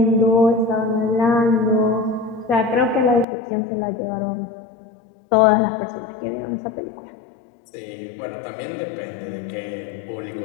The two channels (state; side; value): drops out; right; at 3.2 s